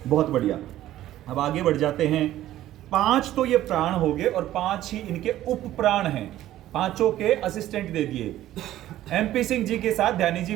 बहुत बढ़िया। अब आगे बढ़ जाते हैं। 5 तो ये प्राण हो गए और 5 ही इनके उप प्राण हैं। पांचों के असिस्टेंट दे दिए। MP सिंह जी के साथ ध्यानी जी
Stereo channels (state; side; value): quieter; left; 13.8 dB